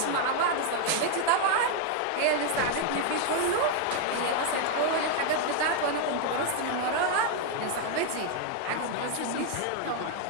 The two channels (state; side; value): different; both; correlation 0.00